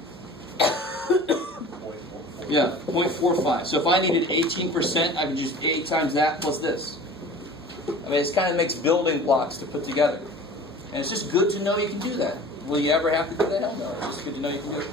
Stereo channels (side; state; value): both; normal; correlation 0.41